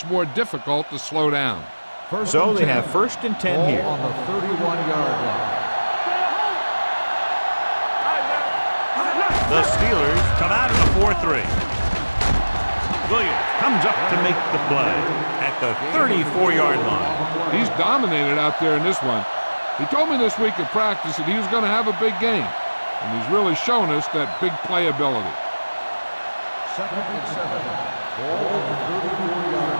more difficult to slow down. So they have 1st and 10 here. On the 31-yard line. The Steelers come out in a 4-3. Williams comes up to make the play at the 34-yard line. He's dominated out there in this one. He told me this week at practice that he was going to have a big game, and he's really shown us that big playability. 2nd and 7. Ball on the 34-yard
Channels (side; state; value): both; inverted; correlation -1.00